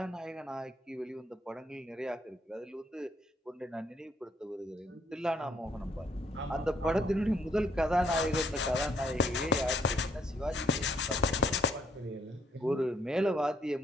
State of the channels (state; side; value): normal; both; correlation 0.68